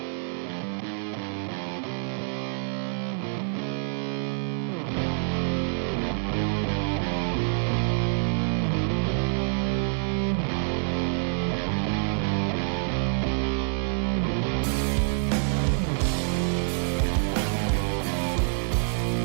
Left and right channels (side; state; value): left; silent; 60 dB below the other